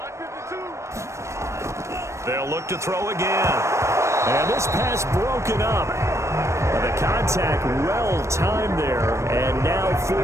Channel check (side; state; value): left; late; 0.14 ms